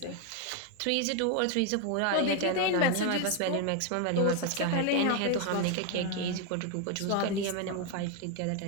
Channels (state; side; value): different; both; correlation 0.01